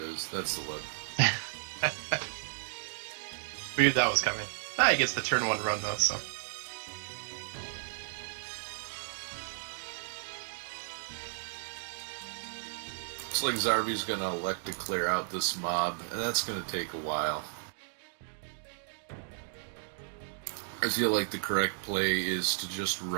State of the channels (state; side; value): silent; left; digital silence